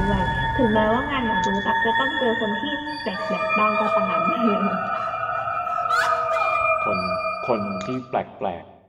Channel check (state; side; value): identical; both; correlation 1.00